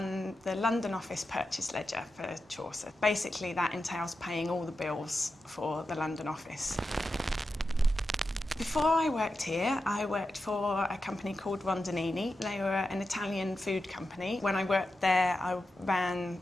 the London office purchase ledger for Chaucer. Basically that entails paying all the bills for the London office. Before I worked here, I worked for a company called Rondinini. They were an Italian food company. When I worked there, I ran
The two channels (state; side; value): normal; both; correlation 0.90